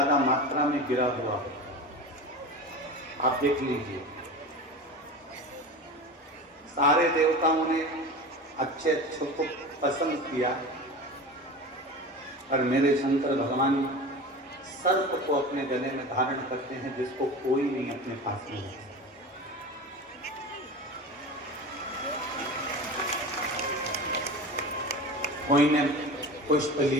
मात्रा में गिरा हुआ हो। आप देख लीजिए, सारे देवताओं ने अच्छे अच्छों को पसंद किया और मेरे शंकर भगवान सर्प को अपने गले में धारण करते हैं, जिसको कोई नहीं अपने पास में है। कोई ने पुष्प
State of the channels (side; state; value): both; normal; correlation 0.31